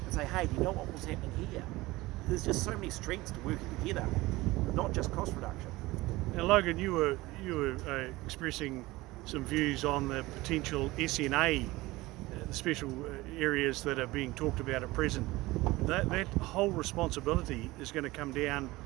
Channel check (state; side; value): quieter; left; 19.8 dB